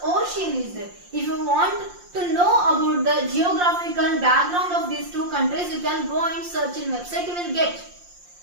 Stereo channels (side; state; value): left; late; 5.7 ms